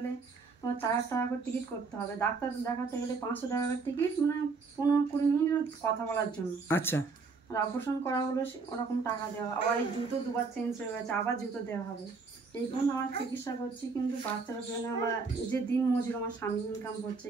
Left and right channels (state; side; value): quieter; left; 4.5 dB